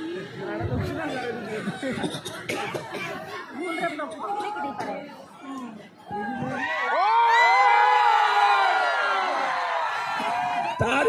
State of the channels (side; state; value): both; identical; correlation 1.00